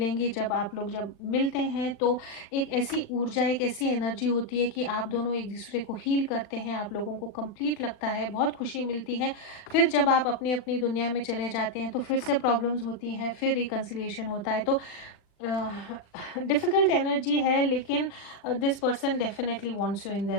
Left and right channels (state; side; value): late; right; 39 ms